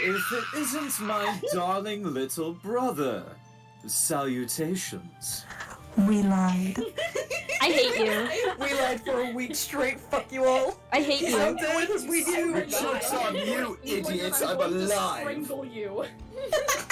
it isn't my darling little brother? Salutations. We lied. I hate you. We lied for a week straight. Fuck you all. I hate How you. dare we do? The joke's on you, idiots. I'm going to alive. strangle you.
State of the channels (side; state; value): both; identical; correlation 1.00